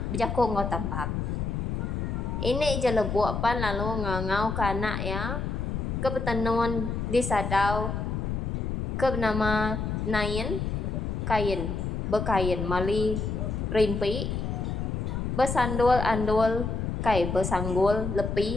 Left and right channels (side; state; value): left; noise; rumble, 2 dB below the sound